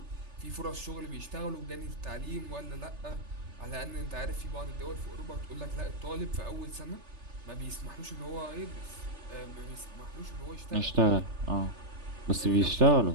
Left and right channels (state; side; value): late; left; 3.4 ms